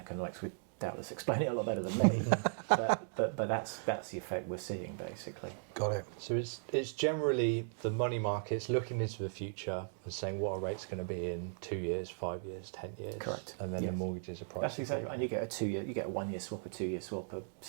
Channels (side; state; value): left; silent; digital silence